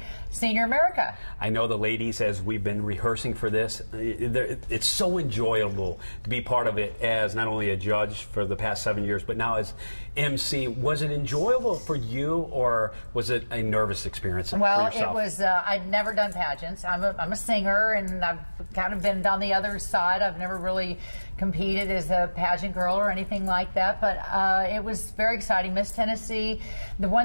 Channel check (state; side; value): inverted; both; correlation -1.00